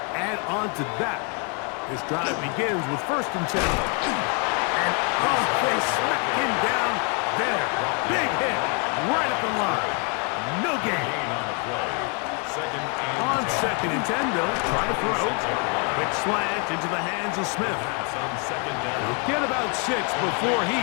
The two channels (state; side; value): quieter; right; 37.0 dB